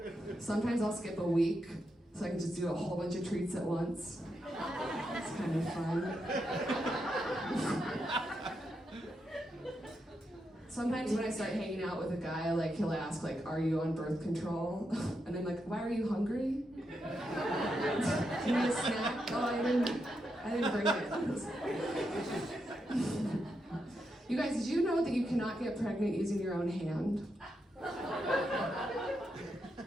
Sometimes I'll skip a week so I can just do a whole bunch of treats at once. It's kind of fun. Sometimes when I start hanging out with a guy, like he'll ask, like, "Are you on birth control?" And I'm like, "Why are you hungry? Do you need a snack?" "Oh, I didn't bring it." You guys, did you know that you cannot get pregnant using your own hand?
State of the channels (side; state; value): both; normal; correlation 0.84